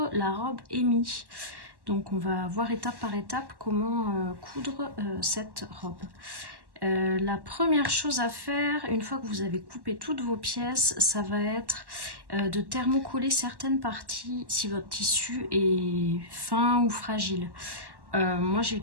la robe Amy. Donc on va voir étape par étape comment coudre cette robe. La première chose à faire, une fois que vous avez coupé toutes vos pièces, ça va être de thermocoller certaines parties si votre tissu est fin ou fragile. Moi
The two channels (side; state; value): left; late; 1.1 ms